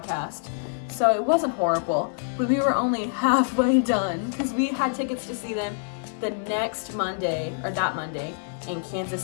So it wasn't horrible, but we were only halfway done because we had tickets to see them the next Monday, or that Monday, in Kansas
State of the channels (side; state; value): right; silent; digital silence